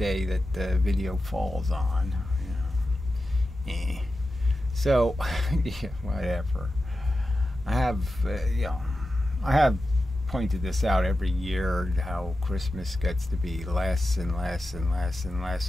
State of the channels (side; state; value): both; normal; correlation 0.92